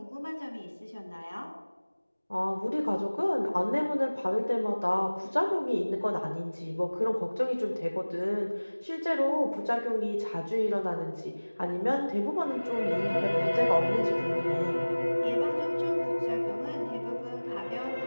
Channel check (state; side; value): inverted; both; correlation -1.00